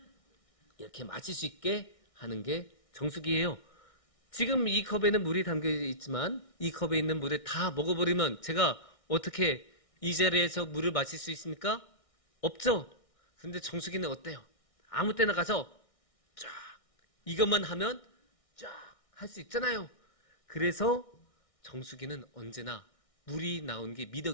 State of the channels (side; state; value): right; late; 1.6 ms